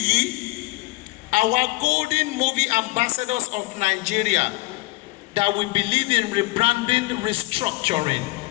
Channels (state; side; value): quieter; right; 21.4 dB